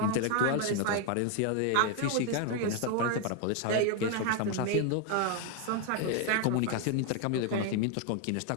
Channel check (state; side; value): different; both; correlation 0.00